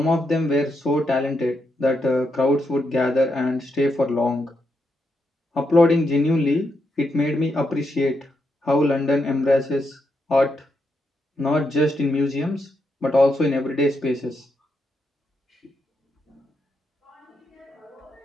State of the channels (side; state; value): both; normal; correlation 0.82